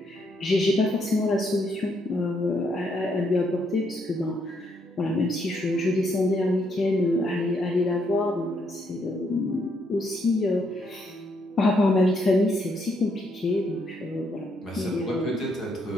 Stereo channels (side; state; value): both; normal; correlation 0.74